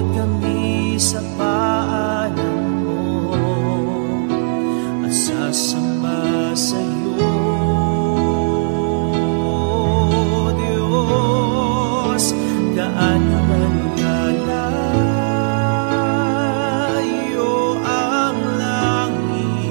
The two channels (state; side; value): silent; left; digital silence